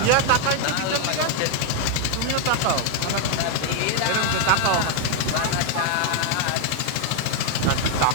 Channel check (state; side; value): different; both; correlation 0.00